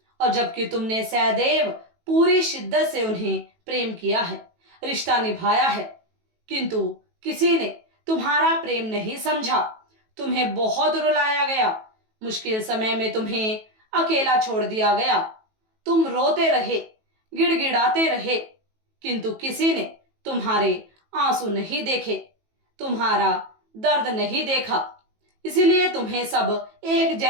और जबकि तुमने सदैव पूरी शिद्दत से उन्हें प्रेम किया है, रिश्ता निभाया है, किंतु किसी ने तुम्हारा प्रेम नहीं समझा। तुम्हें बहुत रुलाया गया, मुश्किल समय में तुम्हें अकेला छोड़ दिया गया। तुम रोते रहे, गिड़गिड़ाते रहे, किंतु किसी ने तुम्हारे आंसू नहीं देखे, तुम्हारा दर्द नहीं देखा। इसीलिए तुम्हें सब एक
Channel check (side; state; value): left; late; 18 ms